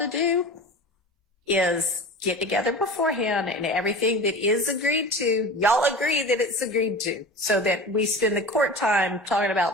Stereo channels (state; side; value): normal; both; correlation 0.34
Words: do is get together beforehand and everything that is agreed to, y'all agree that it's agreed to, so that we spend the court time talking